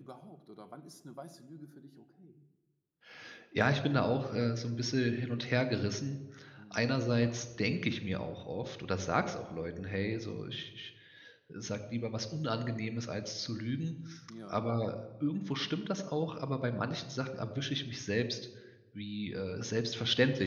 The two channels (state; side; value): identical; both; correlation 1.00